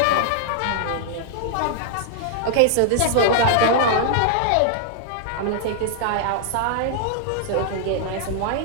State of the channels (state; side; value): different; both; correlation -0.01